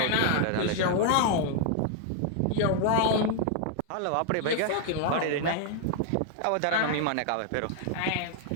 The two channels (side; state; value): both; different; correlation 0.00